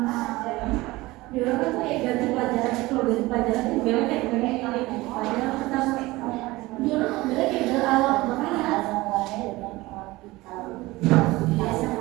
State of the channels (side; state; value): left; quieter; 20.1 dB